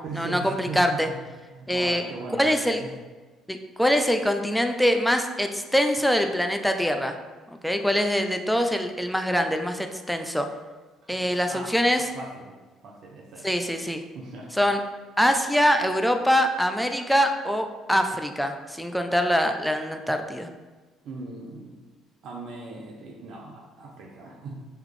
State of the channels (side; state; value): both; normal; correlation 0.89